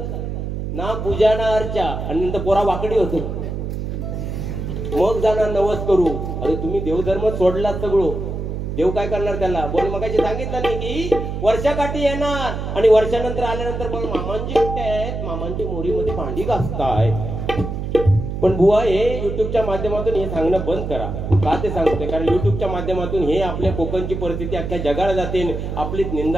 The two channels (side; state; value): right; noise; hum, 4 dB below the sound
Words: ना, पूजा ना अर्चा, आणि नंतर पोरा वाकडी होतो, मग जाणार नवस करू. अरे तुम्ही देवधर्म सोडला सगळं, देव काय करणार त्याला. बोल मगाशी सांगितलं नाही की वर्षाकाठी येणार आणि वर्षानंतर आल्यानंतर पण मामांची कुठे आहेत, मामांची मोरीमध्ये भांडी घासताय. पण बुवा हे युट्यूबच्या माध्यमातून हे सांगणं बंद करा. का ते सांगते, कारण युट्यूबच्या माध्यमातून हे आपल्या कोकणची परिस्थिती अख्ख्या जगाला जाते, आपलीच